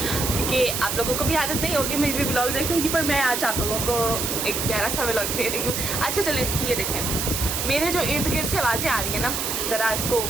आप लोगों को भी आदत नहीं होगी मेरे व्लॉग देखने की, पर मैं आज आप लोगों को एक प्यारा सा व्लॉग दे रही हूँ। अच्छा चलें, ये देखें मेरे जो इर्द गिर्द से आवाज़ें आ रही हैं ना, ज़रा इसको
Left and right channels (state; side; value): noise; right; hiss, 1 dB below the sound